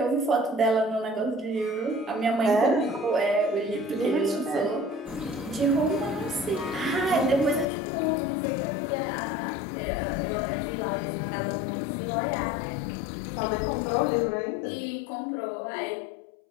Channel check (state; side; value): drops out; right; at 7.7 s